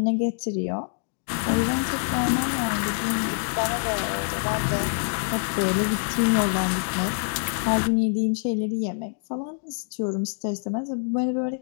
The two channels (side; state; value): right; silent; digital silence